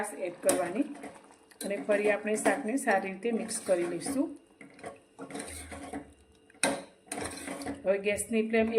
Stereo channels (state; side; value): identical; both; correlation 1.00